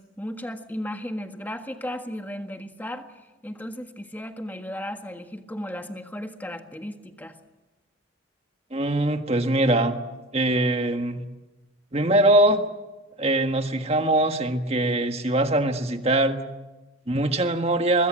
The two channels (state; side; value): normal; both; correlation 0.33